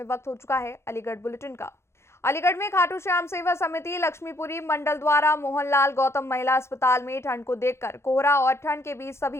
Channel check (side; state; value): right; late; 0.13 ms